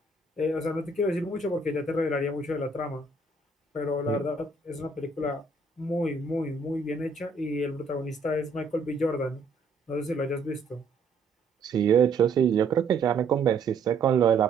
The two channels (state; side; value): quieter; left; 3.7 dB